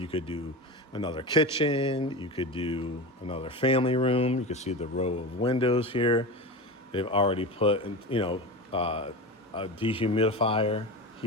could do another kitchen. You could do another family room. You can see the row of windows here. They've already put, a dehumidifier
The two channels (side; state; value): both; normal; correlation 0.26